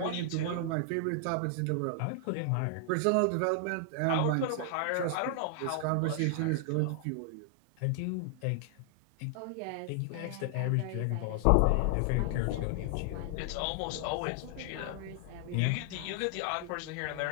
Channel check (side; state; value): both; different; correlation 0.00